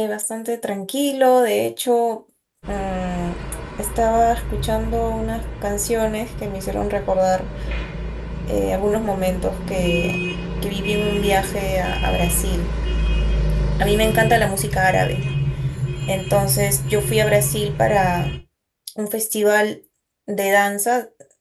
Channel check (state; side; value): identical; both; correlation 1.00